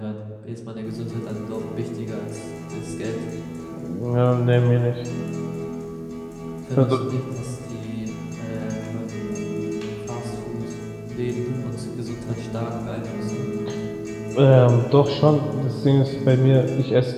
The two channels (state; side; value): identical; both; correlation 1.00